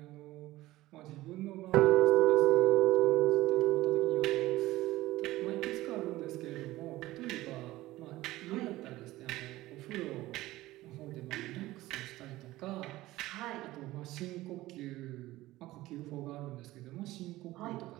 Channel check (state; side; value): quieter; left; 17.3 dB